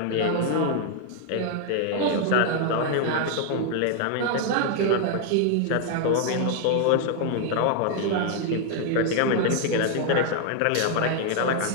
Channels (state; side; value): different; both; correlation 0.00